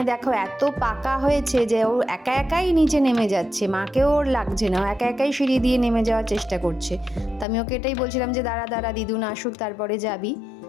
দেখো এত পাকা হয়েছে যে ও একা একাই নিচে নেমে যাচ্ছে, মাকেও ওর লাগছে না, ও একা একাই সিঁড়ি দিয়ে নেমে যাওয়ার চেষ্টা করছে। তো আমি ওকে এটাই বলছিলাম যে দাঁড়া দাঁড়া, দিদুন আসুক তারপরে যাবি।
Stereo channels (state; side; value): drops out; right; at 7.5 s